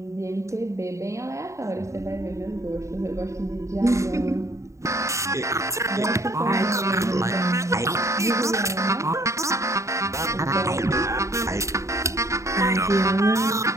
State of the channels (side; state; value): left; late; 0.14 ms